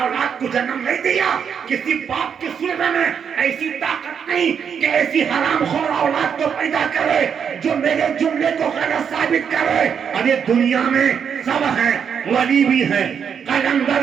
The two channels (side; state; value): left; quieter; 7.3 dB